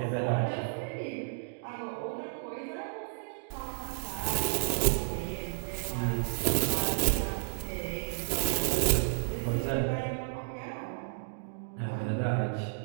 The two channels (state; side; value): silent; left; digital silence